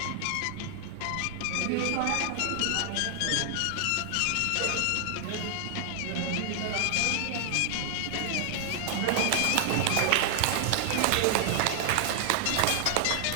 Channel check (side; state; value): both; different; correlation 0.00